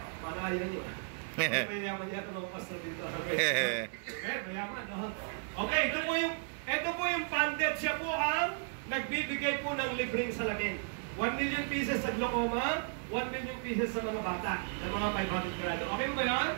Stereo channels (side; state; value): left; silent; 55 dB below the other